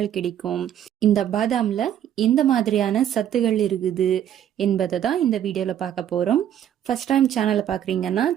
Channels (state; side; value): quieter; left; 10.4 dB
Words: கிடைக்கும், இந்த பாதாமில் எந்த மாதிரியான சத்துகள் இருக்குது என்பதை தான் இந்த வீடியோவில் பார்க்க போகிறோம். ஃபர்ஸ்ட் டைம் சேனலை பார்க்குறீங்கன்னா